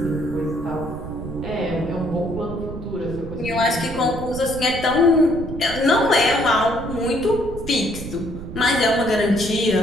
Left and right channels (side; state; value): right; noise; rumble, 10 dB below the sound